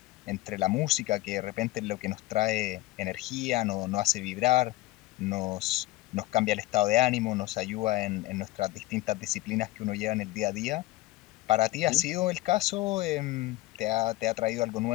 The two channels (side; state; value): right; quieter; 18.5 dB